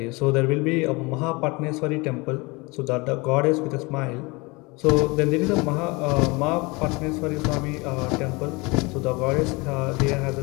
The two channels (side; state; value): right; quieter; 25.8 dB